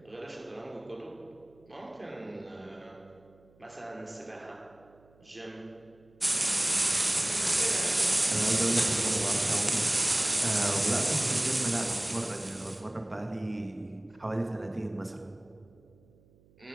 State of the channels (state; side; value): noise; right; hum, 29 dB below the sound